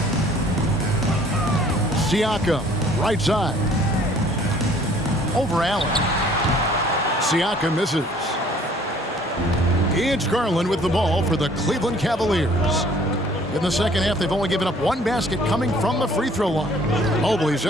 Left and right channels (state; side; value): normal; both; correlation 0.56